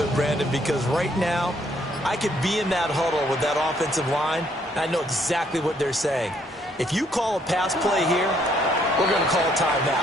Brandon, because right now I could be in that huddle with that offensive line. I know exactly what they're saying. If you call a pass play here, we're going to call a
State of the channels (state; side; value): normal; both; correlation 0.68